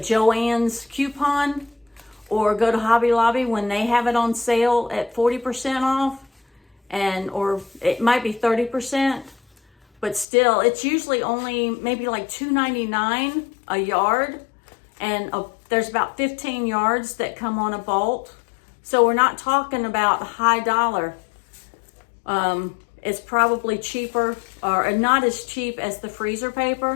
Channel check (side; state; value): right; drops out; at 10.2 s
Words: coupon, or go to Hobby Lobby when they have it on sale at 40% off, or it might be 30%, but still, it's usually only maybe like $2.99 a yard, and there's about 15 yards that come on a bolt. So we're not talking about high dollar. It's probably cheaper, or not as cheap as the freezer